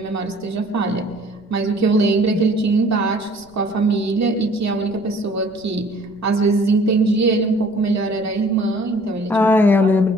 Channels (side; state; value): right; noise; rumble, 28 dB below the sound